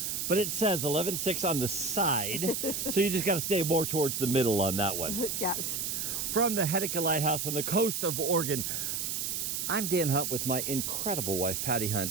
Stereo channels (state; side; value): noise; right; hiss, 2 dB below the sound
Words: But it says 11.6 on the side, so you just got to stay more towards the middle on that one. Yes. From the Heceta Lighthouse on the coast of Oregon, I'm Dan Hunt with my incredible wife, Patti